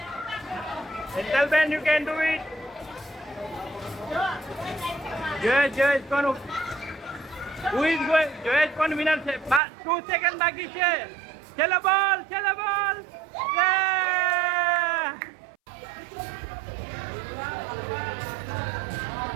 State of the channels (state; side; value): drops out; left; at 9.6 s